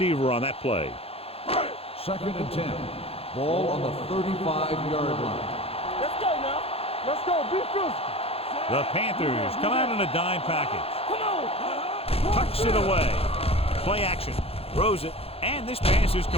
on that play. 2nd and 10. Ball on the 35-yard line. Let's go now. Let's go. Be physical. The Panthers come out in a dime package. Come on. Tucks it away. Play action. Throws it. And this pass is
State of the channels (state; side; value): late; right; 0.28 ms